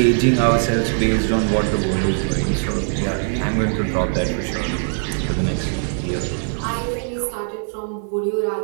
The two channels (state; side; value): silent; left; digital silence